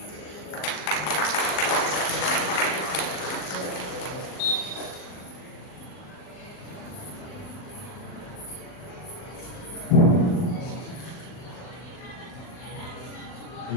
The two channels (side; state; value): right; late; 40 ms